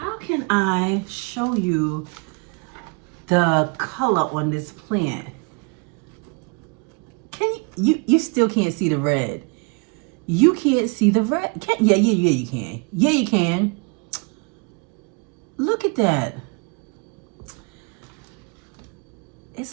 can I show you the color on this plant? You still can't see the red. You can't see the red. Yeah, you can. Yeah, you can. Look at that.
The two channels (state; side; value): quieter; left; 32.7 dB